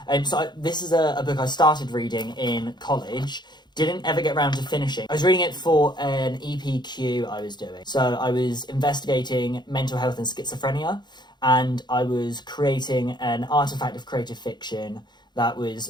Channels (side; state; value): right; late; 0.21 ms